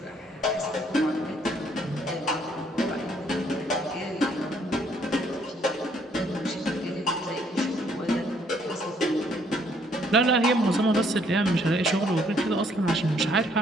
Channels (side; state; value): both; normal; correlation 0.66